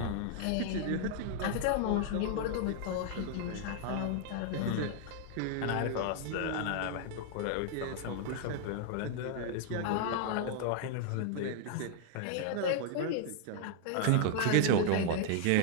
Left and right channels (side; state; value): both; different; correlation 0.00